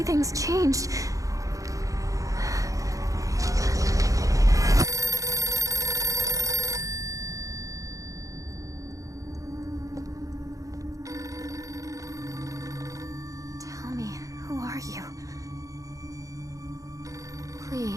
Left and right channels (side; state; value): left; late; 0.16 ms